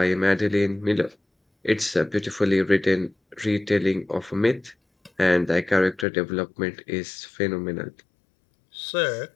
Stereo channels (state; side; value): drops out; right; at 6.1 s